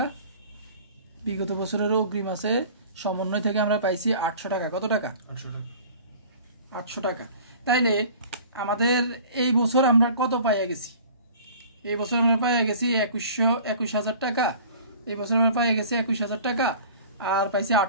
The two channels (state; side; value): inverted; both; correlation -0.45